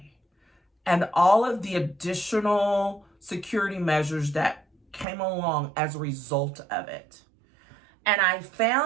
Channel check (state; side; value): drops out; left; at 5.1 s